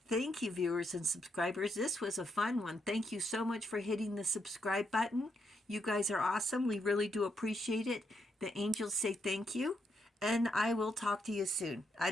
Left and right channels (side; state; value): both; normal; correlation 0.79